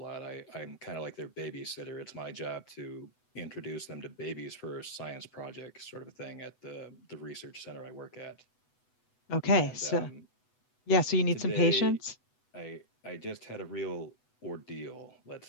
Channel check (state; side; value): late; right; 8.1 ms